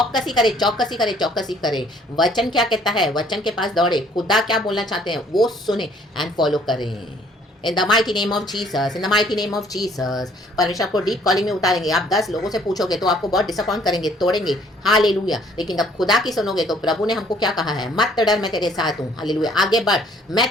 करे, चौकसी करे, चौकसी करे। वचन क्या कहता है, वचन के पास दौड़े। खुदा क्या बोलना चाहते हैं वो सुने एंड फॉलो करें। इन the mighty name of Jesus, in the mighty name of Jesus. परमेश्वर आपको डीप कॉलिंग में उतारेंगे। आप 10 लोगों से पूछोगे तो आपको बहुत डिसअपॉइंट करेंगे, तोड़ेंगे। हालेलुया। लेकिन जब खुदा की सुनोगे तो प्रभु ने हमको क्या कहा है? मत डर, मैं तेरे साथ हूँ। हालेलुया। आगे बढ़, मैं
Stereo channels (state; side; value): normal; both; correlation 0.60